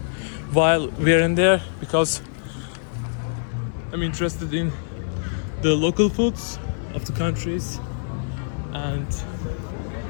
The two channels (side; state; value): right; silent; 58 dB below the other